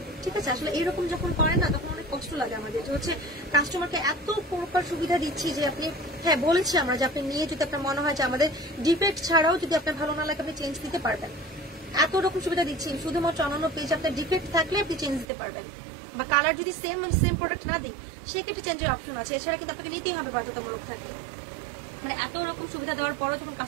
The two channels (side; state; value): left; drops out; at 15.2 s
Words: ঠিক আছে, আসলে এইরকম যখন করেন না তখন অনেক কষ্ট লাগে আমাদের, যে হচ্ছে কাস্টমারকে এত প্রকার সুবিধা দিচ্ছি যে আপনি, হ্যাঁ বলেছি আমরা যে আপনি নিয়ে যদি আপনার মনে হয় যে আমাদের ডিফেক্ট ছাড়াও যদি আপনার ভালো না লাগে আপনি চেঞ্জ দিতে পারবেন, এত রকম সুবিধা দিচ্ছি। শুধুমাত্র অন্যান্য পেজ আপনার ডিফেক্ট থাকলে আপনি চেঞ্জ দিতে পারবেন, বা কালার যদি সেম প্রোডাক্ট না দিই সেক্ষেত্রে চেঞ্জের অপশন আছে, এছাড়া কিন্তু আপনাকে নিতেই হবে বাধ্যতামূলক থাকে। মানে এত রকম সুবিধা দেওয়ার পরও যখন